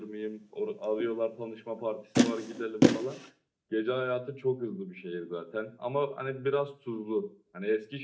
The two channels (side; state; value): both; identical; correlation 1.00